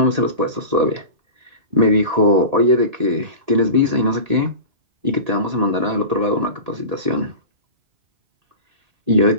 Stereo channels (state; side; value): late; left; 1.8 ms